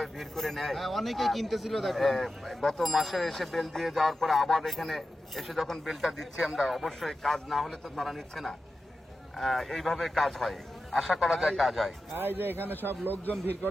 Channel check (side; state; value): both; normal; correlation 0.92